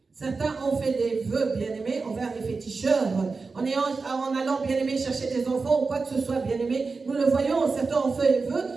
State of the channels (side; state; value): left; quieter; 4.3 dB